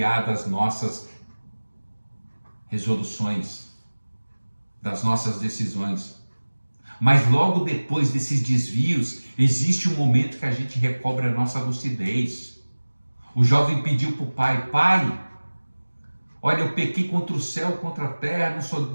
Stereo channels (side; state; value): both; inverted; correlation -1.00